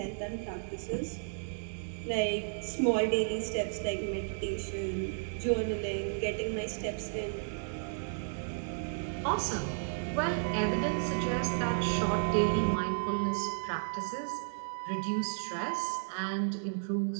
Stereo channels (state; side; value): silent; left; digital silence